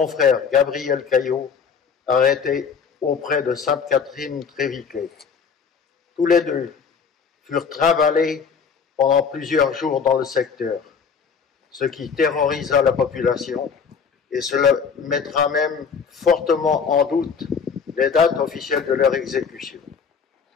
frère Gabriel Caillot, arrêté auprès de Sainte-Catherine-Tréviquet. Tous les deux furent trimballés pendant plusieurs jours dans le secteur, ce qui terrorisa la population et cela mettra même fortement en doute les dates officielles de leur exécution.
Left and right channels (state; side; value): quieter; right; 6.1 dB